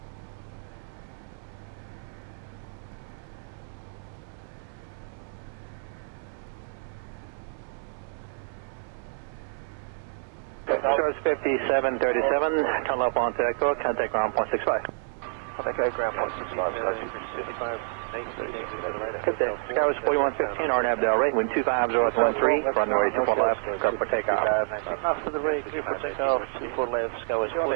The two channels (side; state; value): left; silent; 59 dB below the other